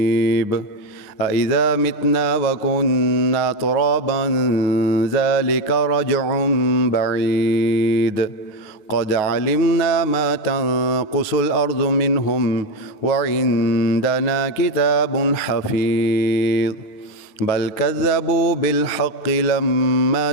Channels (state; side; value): late; right; 9.4 ms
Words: أإذا متنا وكنا ترابا ذلك رجع بعيد قد علمنا ما تنقص الأرض منهم وعندنا كتاب حفيظ بل كذبوا بالحق لما